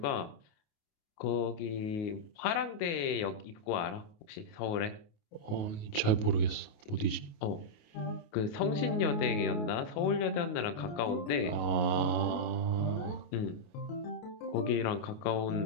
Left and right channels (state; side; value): late; right; 28 ms